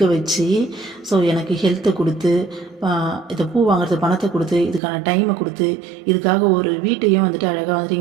வச்சு. ஸோ எனக்கு ஹெல்த்தை கொடுத்து, இதை பூ வாங்குறது பணத்தை கொடுத்து, இதுக்கான டைமை கொடுத்து, இதுக்காக ஒரு வீட்டையும் வந்துட்டு அழகாக வந்துட்டு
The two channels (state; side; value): drops out; left; at 4.8 s